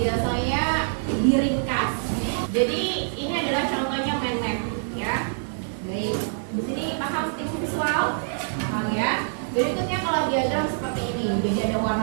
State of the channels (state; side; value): silent; left; 62 dB below the other